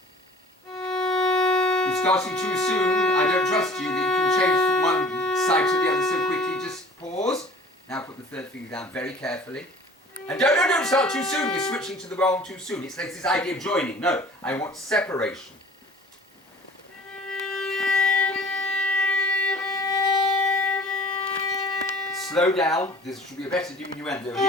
You're starting too soon. I don't trust you that you can change from one side to the other so quickly. Just pause. Now put the third finger down very carefully. And don't start too soon. You're switching to the bow too soon. It's like this idea of joining. No, I want separation. Slow down. There should be a better diminuendo here.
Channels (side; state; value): both; normal; correlation 0.47